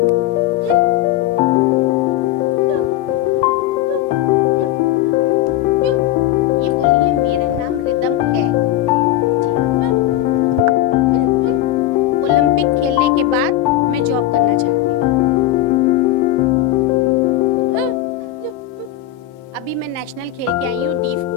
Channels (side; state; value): right; quieter; 13.3 dB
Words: ये बोलिए, मेरा नाम रिदम है जी। ओलंपिक खेलने के बाद मैं जॉब करना चाहती हूँ। अभी मैं नेशनल खेल के आई हूँ, डीफ